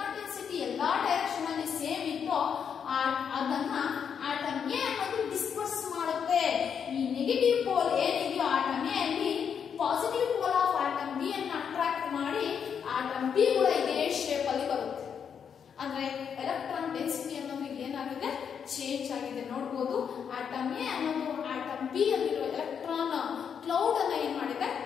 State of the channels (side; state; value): right; quieter; 7.4 dB